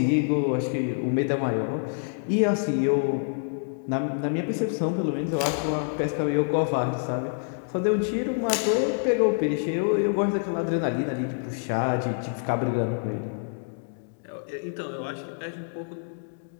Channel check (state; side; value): silent; right; digital silence